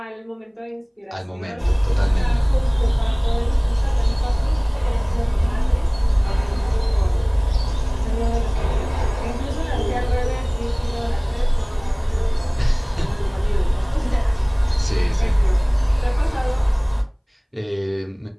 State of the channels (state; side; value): identical; both; correlation 1.00